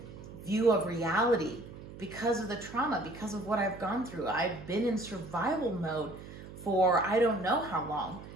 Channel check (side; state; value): right; noise; hum, 14 dB below the sound